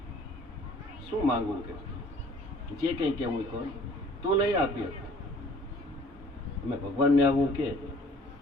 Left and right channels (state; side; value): normal; both; correlation 0.54